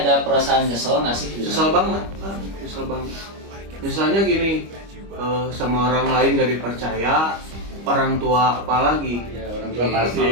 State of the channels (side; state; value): left; late; 25 ms